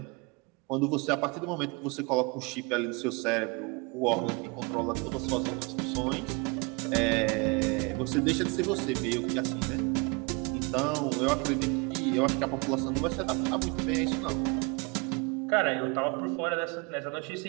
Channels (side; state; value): left; quieter; 29.7 dB